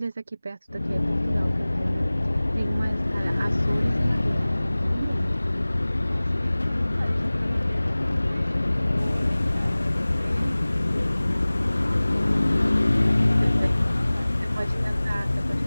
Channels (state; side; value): inverted; both; correlation -0.99